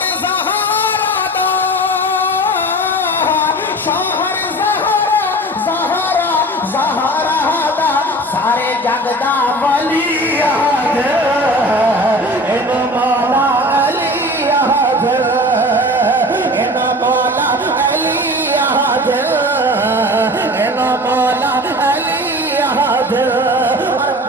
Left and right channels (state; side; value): normal; both; correlation 0.38